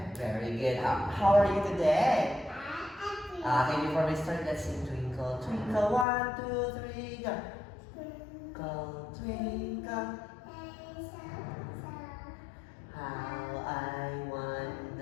Very good. How are you today? Okay, before we start, let's sing Twinkle, Twinkle, 1, 2, 3, go. Twinkle, twinkle, how I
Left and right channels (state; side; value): drops out; right; at 6.1 s